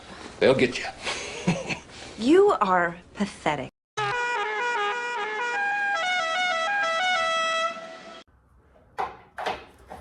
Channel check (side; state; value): both; identical; correlation 1.00